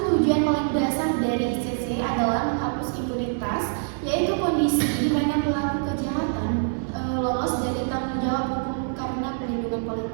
tujuan paling dasar dari ICC adalah menghapus impunitas, yaitu kondisi di mana pelaku kejahatan lolos dari tanggung jawab hukum karena perlindungan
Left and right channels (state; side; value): silent; left; 62 dB below the other